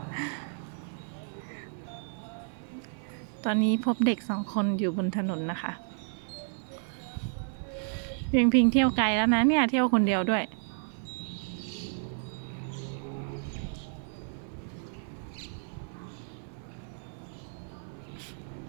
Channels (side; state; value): left; silent; 57 dB below the other